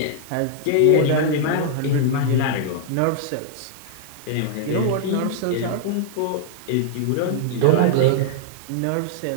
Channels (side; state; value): both; different; correlation -0.01